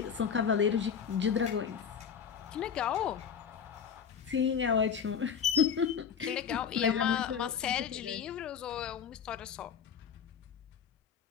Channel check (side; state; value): right; quieter; 7.3 dB